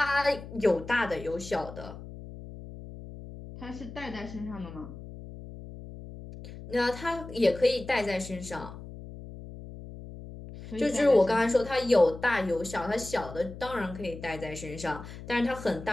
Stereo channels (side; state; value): left; noise; hum, 13 dB below the sound